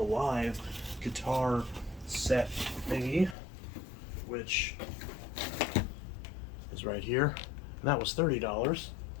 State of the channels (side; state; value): right; drops out; at 3.4 s